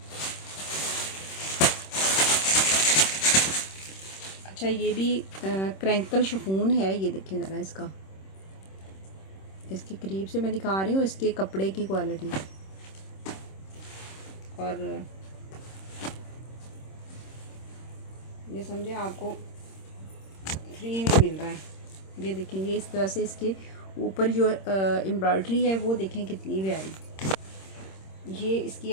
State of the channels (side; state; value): right; late; 26 ms